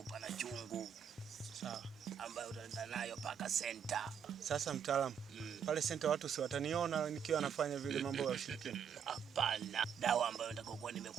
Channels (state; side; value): quieter; left; 7.7 dB